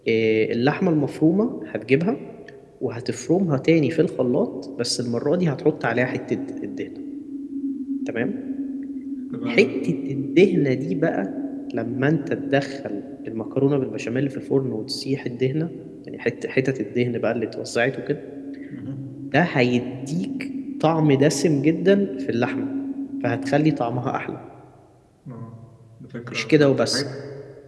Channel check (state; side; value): identical; both; correlation 1.00